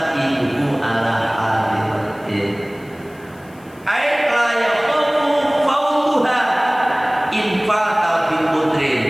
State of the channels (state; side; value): noise; left; hiss, 28 dB below the sound